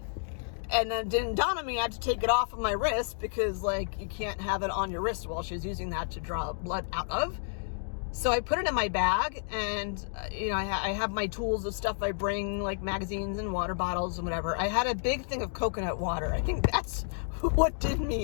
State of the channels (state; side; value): silent; right; digital silence